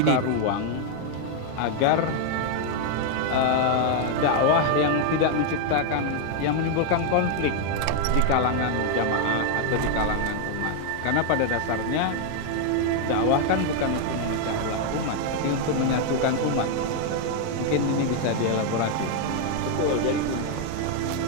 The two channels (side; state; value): both; different; correlation 0.00